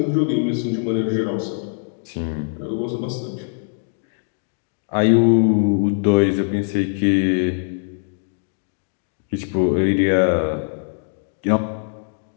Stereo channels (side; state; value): right; silent; digital silence